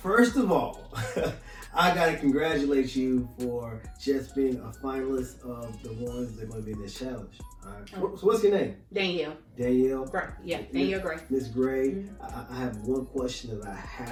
first of all, I gotta congratulate you for just being a finalist of the ones that are going to be in this challenge. All right. So what's your name? Danielle. Danielle. Gray. Yeah, Danielle Gray. Miss Gray. Mm-hmm. I have one question that I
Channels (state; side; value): identical; both; correlation 1.00